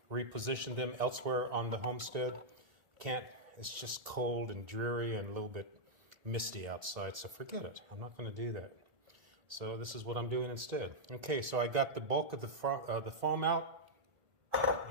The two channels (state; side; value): late; left; 1.8 ms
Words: them elsewhere on the homestead. It's just cold and dreary and a little bit misty outside, so forget it. I'm not going to do that. So this is what I'm doing instead. Okay, so I got the bulk of the foam out,